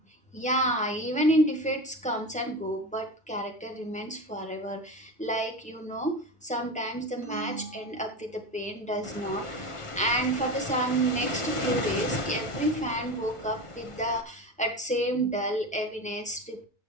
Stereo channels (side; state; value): both; normal; correlation 0.25